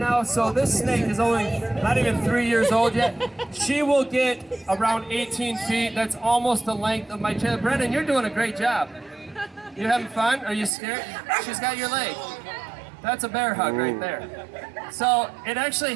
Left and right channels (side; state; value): left; drops out; at 10.7 s